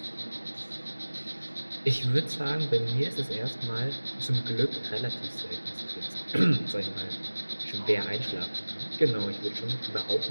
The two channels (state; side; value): inverted; both; correlation -1.00